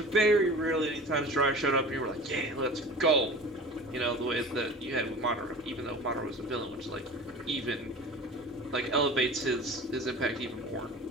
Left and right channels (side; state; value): both; normal; correlation 0.38